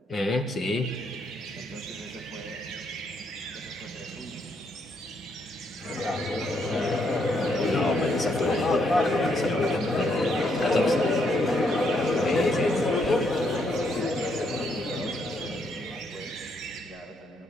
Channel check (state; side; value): normal; both; correlation 0.74